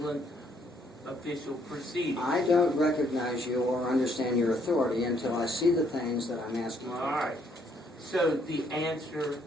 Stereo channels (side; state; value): both; normal; correlation 0.69